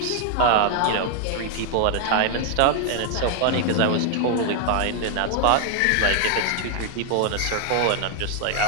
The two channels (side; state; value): both; different; correlation 0.00